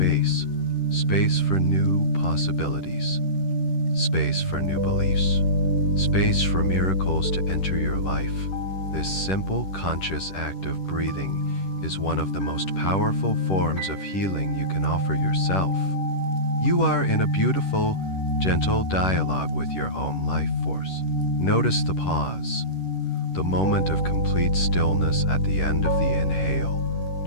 for new possibilities, space for new beliefs, space for miracles to enter your life. This simple, conscious act of breathing is one of the most powerful forms of healing you can offer yourself. You are in a beautiful, gentle dialogue with your own life force. Notice the pause, the moment of complete stillness at the end of the inhale,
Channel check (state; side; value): late; right; 10 ms